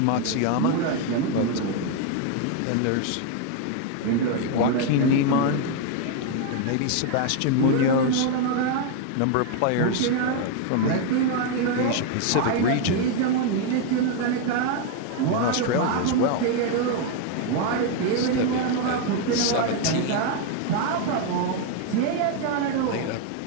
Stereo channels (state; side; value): different; both; correlation 0.01